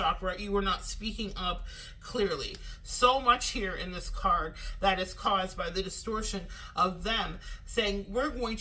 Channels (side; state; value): both; identical; correlation 1.00